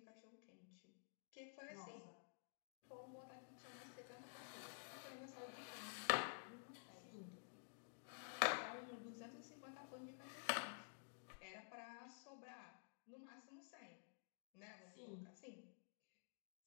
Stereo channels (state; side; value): silent; right; digital silence